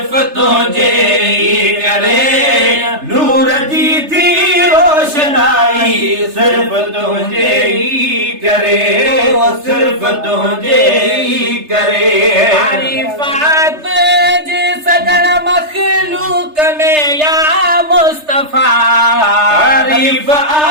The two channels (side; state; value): left; late; 3.3 ms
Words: तुझे करे नूर जी थी रोशनाई सिर्फ तुझे करे सिर्फ तुझे करे तारीफात जी सदन मखलूक में या मुस्तफा